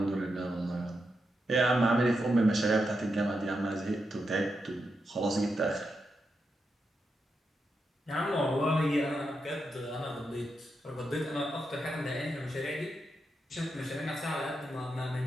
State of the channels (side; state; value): both; normal; correlation 0.85